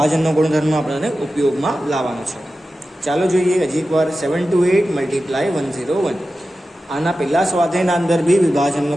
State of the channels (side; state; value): both; normal; correlation 0.93